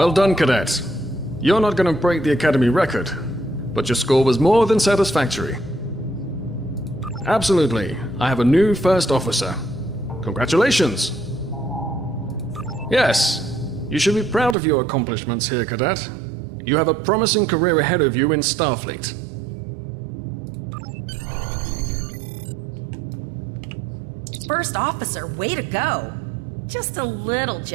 done, Cadet. You're not going to break the Academy record, but your score was more than satisfactory. Absolutely. I have a new first officer. Congratulations. Yes, you should be proud of your accomplishments here, Cadet. You have a promising career ahead of you in Starfleet. First officer, way to go! Just a little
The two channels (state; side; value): drops out; left; at 14.6 s